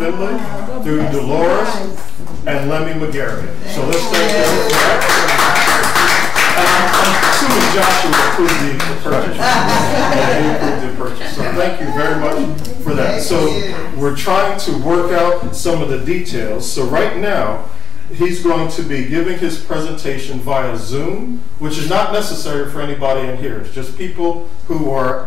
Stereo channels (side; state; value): right; quieter; 6.0 dB